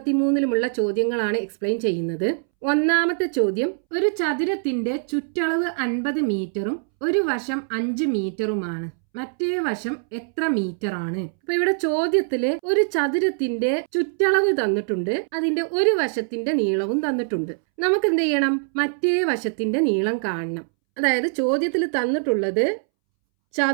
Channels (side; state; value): left; silent; 63 dB below the other